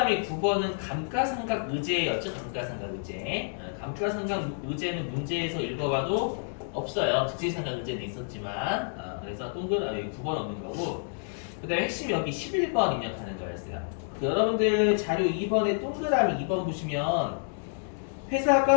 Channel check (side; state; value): right; silent; digital silence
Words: 9번은 감가상각 의제였죠? 감가상각 의제. 감가상각 의제는 문제에서 읽어봐도 없어요. 즉시상각 의제는 있었지만, 그래서 동그라미 9번 없는 거고, 그 다음에 핵심 여기 11번 입력하는 거였어요. 여러분들 자료 2번에 동그라미 2번 보시면